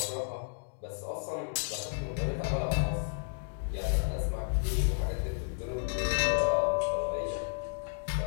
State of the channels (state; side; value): silent; right; digital silence